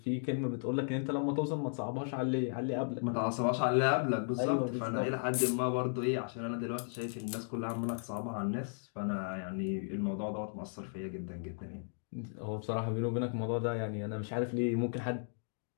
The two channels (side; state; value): right; silent; digital silence